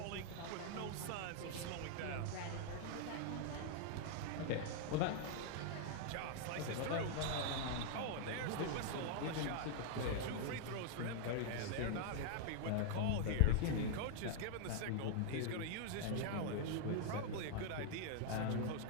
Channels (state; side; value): different; both; correlation 0.00